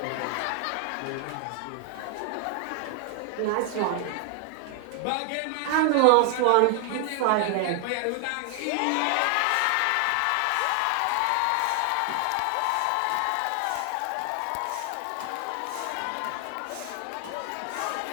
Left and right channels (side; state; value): both; different; correlation 0.00